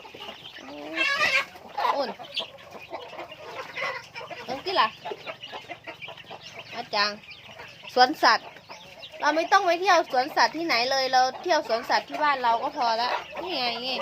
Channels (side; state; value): both; identical; correlation 1.00